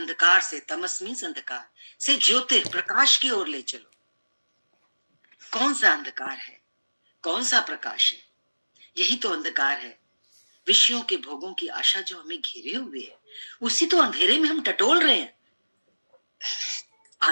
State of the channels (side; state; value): both; inverted; correlation -1.00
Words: से, तमस मीन्स अंधकार से, ज्योतिर प्रकाश की ओर ले चलो। कौन सा अंधकार है? कौन सा प्रकाश है? यही तो अंधकार है। विषयों के भोगों की आशा जो हमें घेरे हुए है, उसी तो अंधेरे में हम टटोल रहे हैं